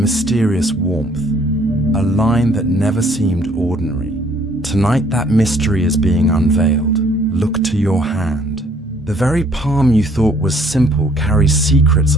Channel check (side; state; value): both; normal; correlation 0.61